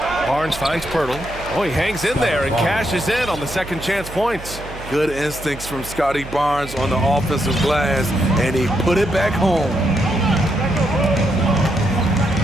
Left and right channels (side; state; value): right; noise; hum, 14 dB below the sound